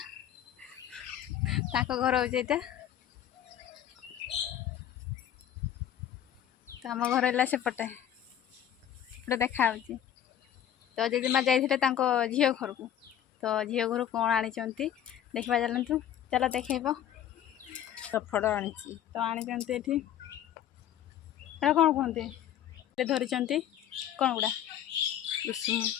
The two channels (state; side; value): quieter; right; 10.5 dB